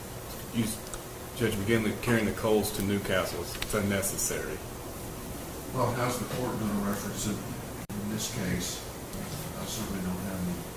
Judge McGinley carrying the coals to Newcastle, it's unnecessary. Well, how's the court going to reference it in this case? I certainly don't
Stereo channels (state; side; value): identical; both; correlation 1.00